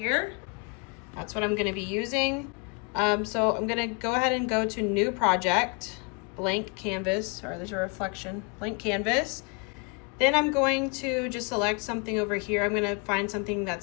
That's what I'm going to be using. So I'm going to go ahead and go to New Project, Blank Canvas. Sorry, there's a reflection. Blank Canvas. Then I'm going to just select something over here. I'm going to find something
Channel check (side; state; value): right; quieter; 33.4 dB